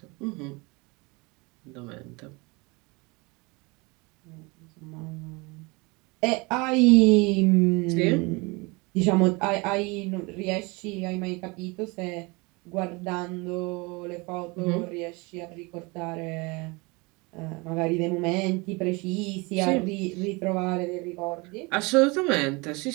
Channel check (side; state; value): left; quieter; 26.7 dB